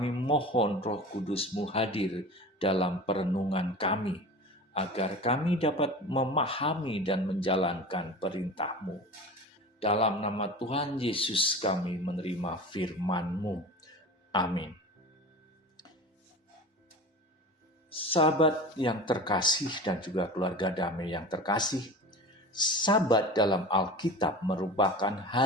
mohon Roh Kudus-Mu hadir dalam perenungan kami, agar kami dapat memahami dan menjalankan perintah-Mu. Dalam nama Tuhan Yesus kami menerima firman-Mu. Amin. Sahabat yang terkasih dan juga keluarga damai yang terkasih, Sabat dalam Alkitab merupakan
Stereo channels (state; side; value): normal; both; correlation 0.34